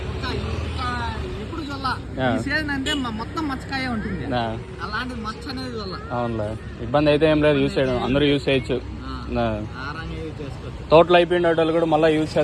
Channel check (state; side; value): identical; both; correlation 1.00